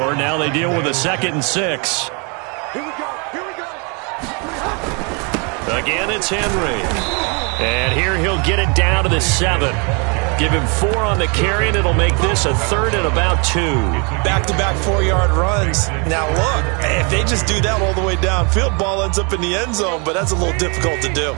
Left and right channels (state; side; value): quieter; left; 33.7 dB